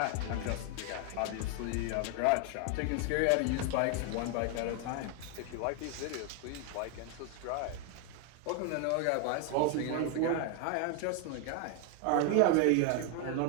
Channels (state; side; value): different; both; correlation 0.01